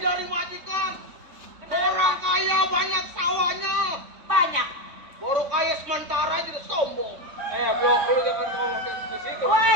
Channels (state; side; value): late; left; 3.5 ms